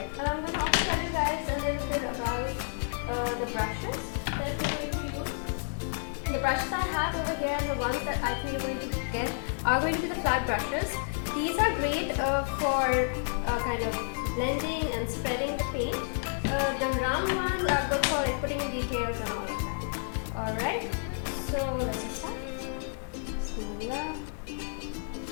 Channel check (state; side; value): silent; right; digital silence